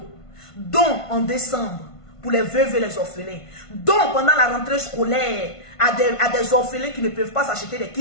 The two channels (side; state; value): right; late; 1.5 ms